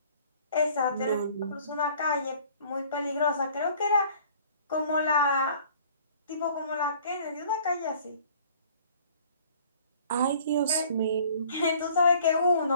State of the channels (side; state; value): both; inverted; correlation -0.53